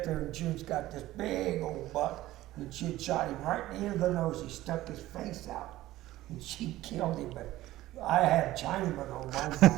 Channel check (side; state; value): left; quieter; 15.9 dB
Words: there, and June's got this big old buck, and she'd shot him right in the end of the nose. He stuck his face out, and she killed him, but I had Chinaman on my